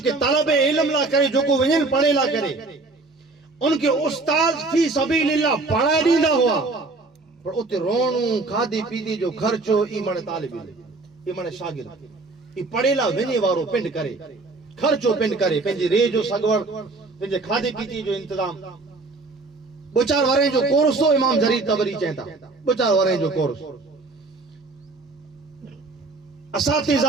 کے طلب علم لا کرے جو کو ونجن پڑھے لا کرے ان کے استاد فی سبیل اللہ پڑھائی ڈیندا ہوا پر اتے رونوں کھادی پیدی جو خرچو ای منے طالب علم ای منے شاگرد ای پڑھے لا ونجے وارو پنڈ کرے خرچو پنڈ کرے پنجی رے جو سگوڑ پنجے کھادی پیدی جو انتظام بچار وارے جو کورس تو امام جریر طبری چاہتا بچار وارے جو کورس اساتذہ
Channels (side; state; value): left; quieter; 3.5 dB